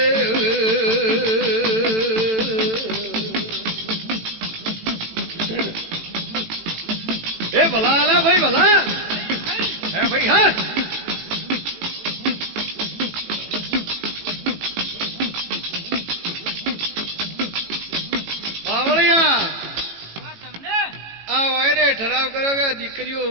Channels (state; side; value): late; left; 18 ms